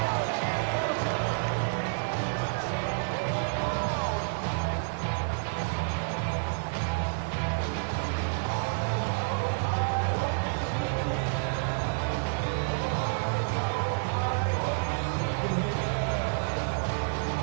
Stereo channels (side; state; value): left; silent; digital silence